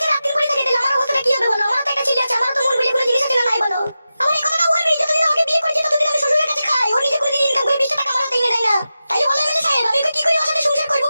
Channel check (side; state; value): both; inverted; correlation -0.92